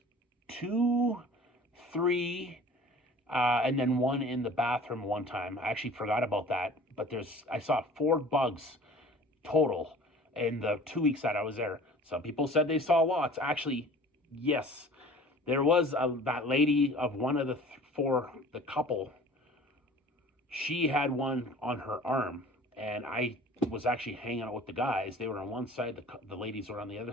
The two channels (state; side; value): normal; both; correlation 0.45